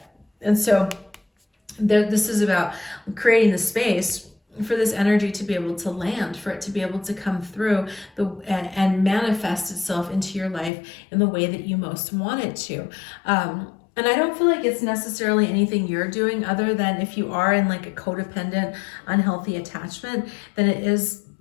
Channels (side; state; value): right; drops out; at 10.7 s